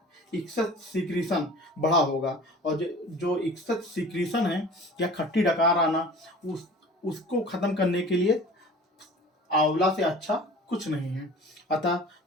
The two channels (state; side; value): normal; both; correlation 0.42